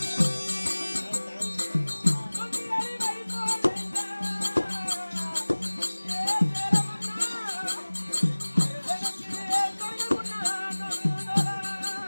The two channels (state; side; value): inverted; both; correlation -1.00